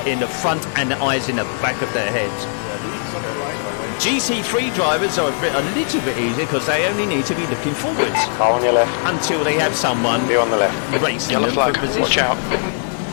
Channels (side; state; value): right; silent; 66 dB below the other